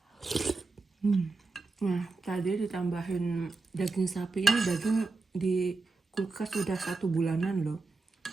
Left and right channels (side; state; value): left; quieter; 3.9 dB